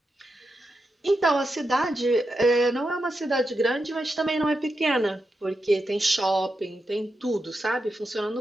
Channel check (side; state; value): both; normal; correlation 0.87